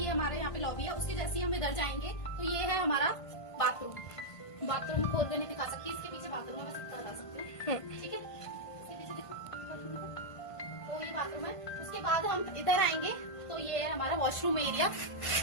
हमारे यहाँ पे लॉबी है। उसके जैसे ही हम इधर जाएंगे तो ये है हमारा बाथरूम। बाथरूम खोल के नहीं दिखा सकती, इसके पीछे बाथरूम है, बस इतना बता सकती हूँ। ठीक है, इसके पीछे देखो, तो ये बाथरूम है। उसके बाद हम इधर आएंगे तो ये है हमारा वॉशरूम एरिया,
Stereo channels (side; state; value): right; late; 1.5 ms